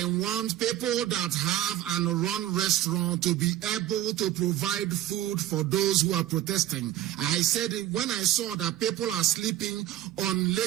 want people that have and run restaurant to be able to provide food for those who are protesting. I said it when I saw that people are sleeping on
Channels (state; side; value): quieter; left; 13.1 dB